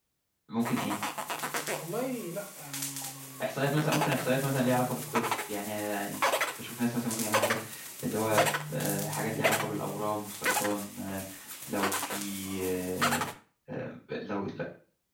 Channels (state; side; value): identical; both; correlation 1.00